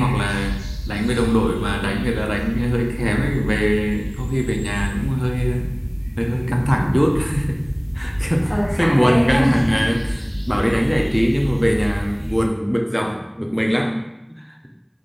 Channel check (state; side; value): identical; both; correlation 1.00